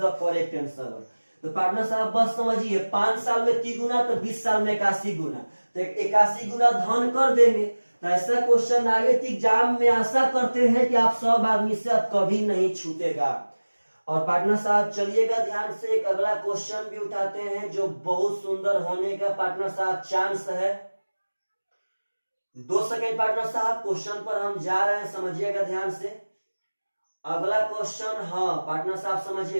the correct answer. तो पार्टनर साहब बस समझिए, 5 साल में तिगुना, तो 20 साल में 81 गुना, तो 81 गुना धन कर देंगे। तो ऐसा क्वेश्चन आगे एग्जाम में आशा करते हैं कि आप सब आदमी से अब कभी नहीं छूटेगा। और पार्टनर साहब चलिएगा ध्यान से, एक अगला क्वेश्चन भी उठाते हैं जो बहुत सुंदर होने का पार्टनर साहब चांस है। 2 सेकेंड पार्टनर साहब, क्वेश्चन पर हम जा रहे हैं, समझिएगा ध्यान से। अगला क्वेश्चन, हाँ पार्टनर साहब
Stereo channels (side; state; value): both; inverted; correlation -1.00